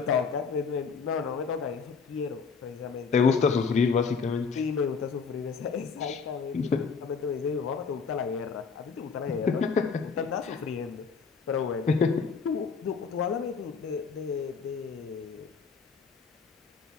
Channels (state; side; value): quieter; right; 5.4 dB